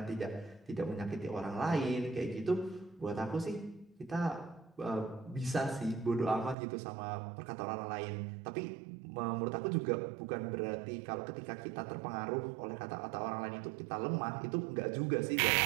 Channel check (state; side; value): drops out; left; at 6.6 s